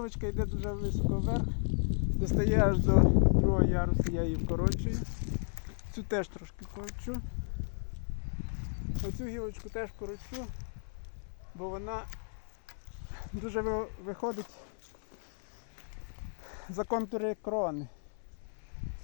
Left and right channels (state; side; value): silent; right; 55 dB below the other